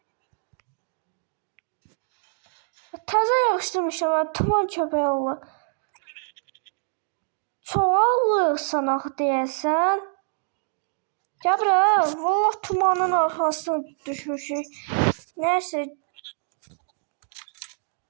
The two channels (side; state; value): left; silent; digital silence